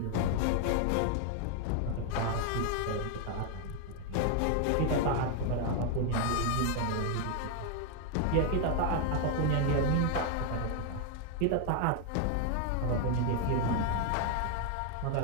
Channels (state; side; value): different; both; correlation 0.00